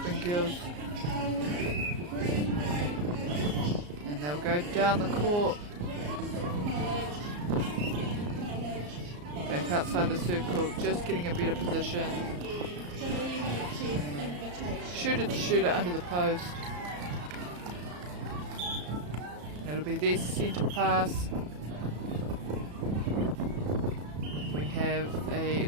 girls. And they'll go down the court. Back outside the circle, just getting a better position. Shooter to shooter under the post. And it'll be their centre pass. We have a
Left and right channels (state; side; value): late; left; 34 ms